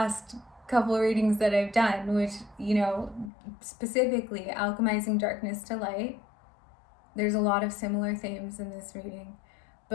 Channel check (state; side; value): drops out; right; at 3.3 s